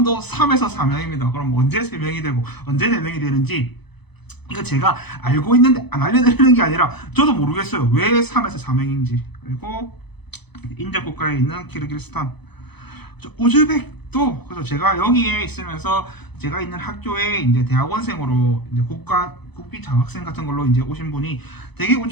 3에서 4명입니다. 그럼 언제 3명이 되고 언제 4명이 되는지 이거 제가 알고 있는데 안 알려드리는 게 아니라 저도 모르겠어요. 왜 3에서 4명인지. 그리고 인접 국가에 있는 키르기스탄, 우즈벡도. 그래서 제가 여기에 있으면서 제가 있는 학교에 이제 대학원생으로 이제 국비 장학생 같은 걸로 이제 오신 분이 되게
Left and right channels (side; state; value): right; late; 0.99 ms